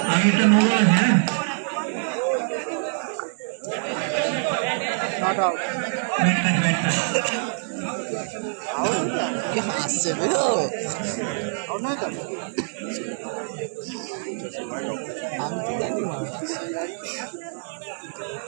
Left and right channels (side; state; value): left; silent; digital silence